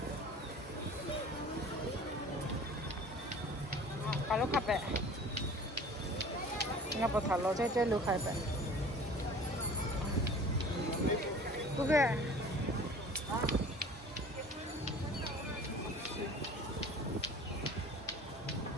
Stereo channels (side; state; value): both; normal; correlation 0.45